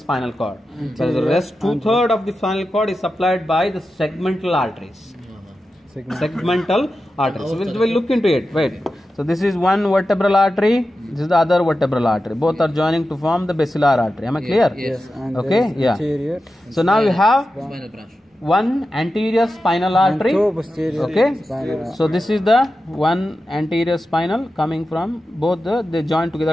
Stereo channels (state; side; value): normal; both; correlation 0.92